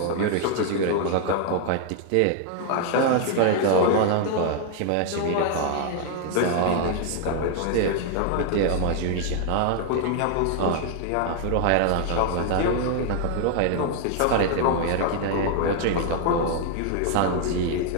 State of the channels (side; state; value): both; different; correlation 0.00